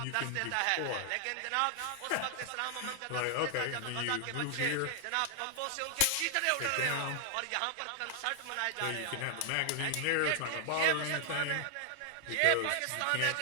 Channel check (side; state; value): both; different; correlation 0.00